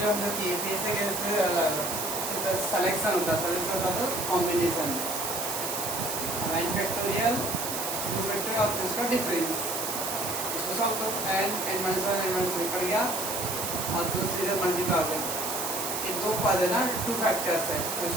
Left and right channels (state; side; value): noise; right; hiss, 3 dB below the sound